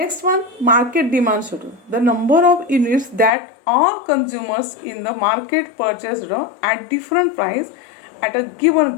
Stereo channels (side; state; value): right; drops out; at 3.3 s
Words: one, market demand schedule. The number of units that all consumers in the market purchased at different price at a given